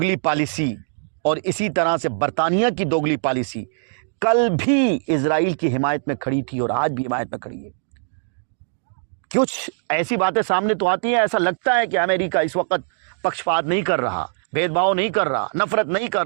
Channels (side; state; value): left; silent; digital silence